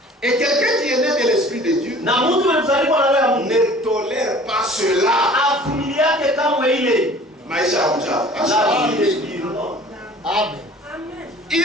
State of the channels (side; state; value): both; normal; correlation 0.48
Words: Et quelqu'un qui est né de l'Esprit de Dieu Na mtu mzaliwa na roho ya Mungu ne tolère pas cela. avumiliake kamwe ile. Maisha ya uchafu. La vie des spirits. Amen. Il